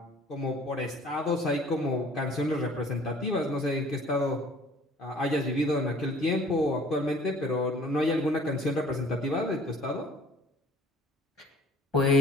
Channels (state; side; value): normal; both; correlation 0.53